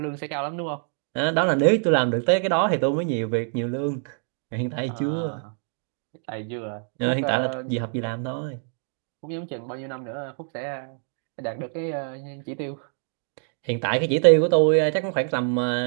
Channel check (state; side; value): silent; left; 56 dB below the other